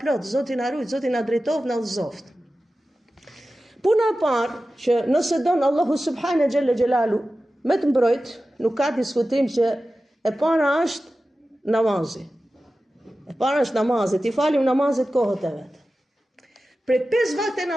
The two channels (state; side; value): normal; both; correlation 0.94